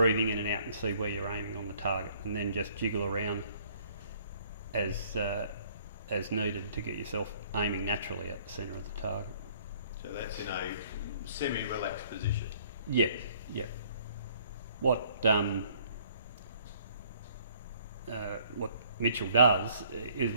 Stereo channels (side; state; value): both; inverted; correlation -0.60